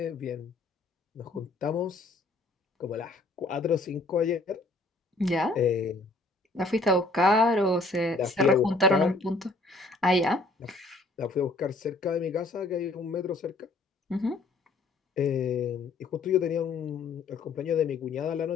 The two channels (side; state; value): right; quieter; 3.1 dB